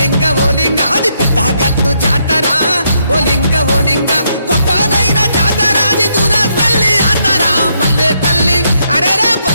అది పెద్ద గట్టు జాతర ఓలింగ గొప్పనైన జాతర అది దూరపల్లి జాతర. పల్లె తల్లి అరేరే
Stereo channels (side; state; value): both; inverted; correlation -0.76